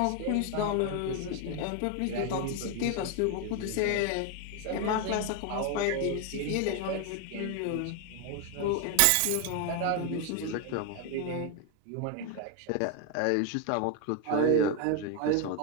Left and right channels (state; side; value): different; both; correlation 0.01